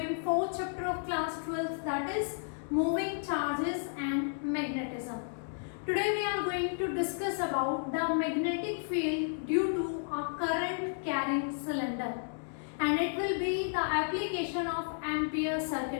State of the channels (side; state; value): right; silent; digital silence